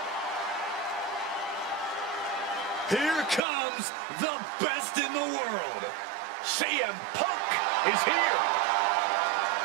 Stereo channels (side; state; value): left; drops out; at 3.4 s